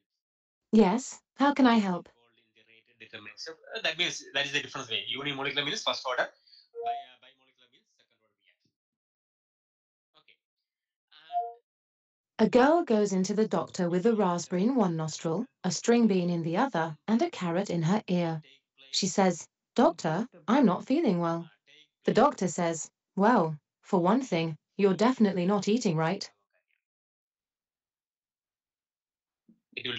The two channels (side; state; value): both; identical; correlation 1.00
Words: Yes, how can I help? Involved in the rate determinant step. That means that is the difference way. Unimolecular means first order. Bimolecular means second order reaction. Okay. A girl goes into the doctor with a raspberry in one nostril, a string bean in the other, and a carrot in her ear. She says, "Doctor, I'm not feeling well." The doctor says, "Well, for one thing, you're definitely not eating right." It will